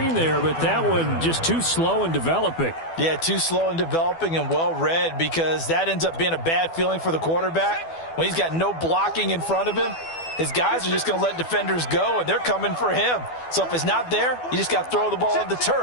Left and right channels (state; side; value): late; right; 12 ms